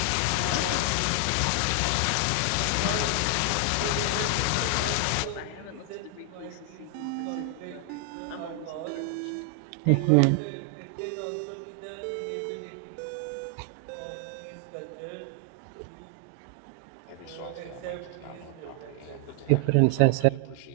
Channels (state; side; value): different; both; correlation 0.00